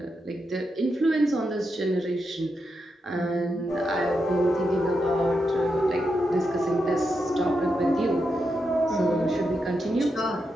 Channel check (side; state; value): both; normal; correlation 0.85